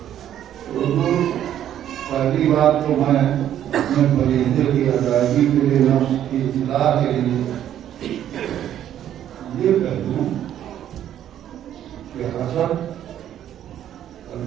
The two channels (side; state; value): left; quieter; 10.9 dB